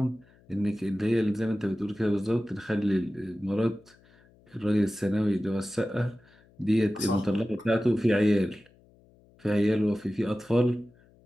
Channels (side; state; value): left; noise; hum, 29 dB below the sound